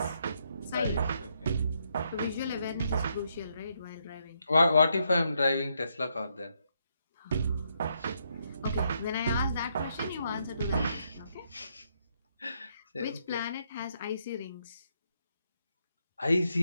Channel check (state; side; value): inverted; both; correlation -0.76